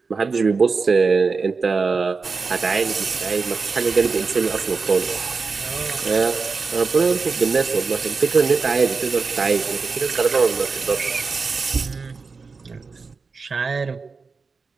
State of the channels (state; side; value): quieter; left; 4.6 dB